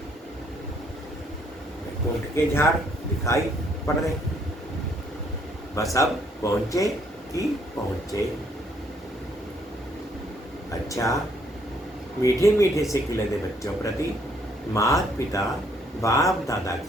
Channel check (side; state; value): both; normal; correlation 0.67